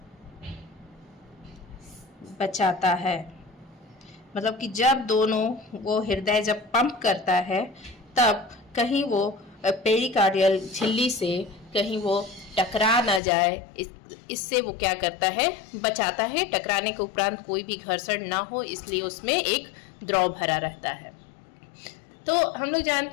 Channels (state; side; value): drops out; right; at 13.2 s